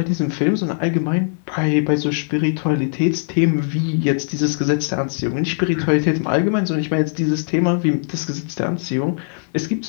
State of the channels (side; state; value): right; silent; digital silence